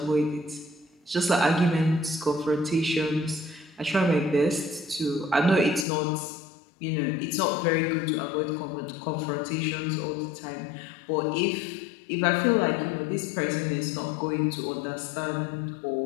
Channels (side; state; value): right; drops out; at 5.9 s